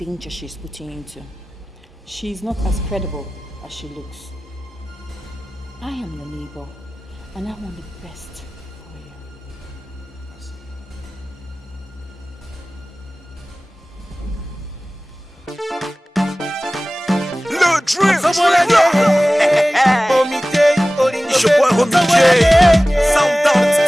she's putting you into. She is not as credible as she looks. I am your neighbor, and I want the best for you. Le Dream! It's your boy Homie J. Sound Down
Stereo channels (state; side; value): normal; both; correlation 0.97